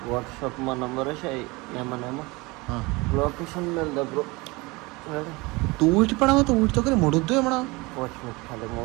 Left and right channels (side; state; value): left; quieter; 24.1 dB